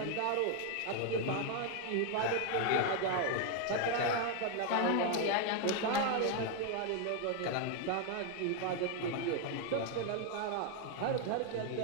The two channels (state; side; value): different; both; correlation 0.00